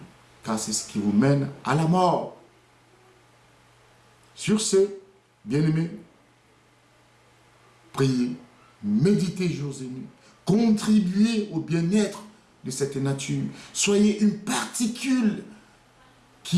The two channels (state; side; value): identical; both; correlation 1.00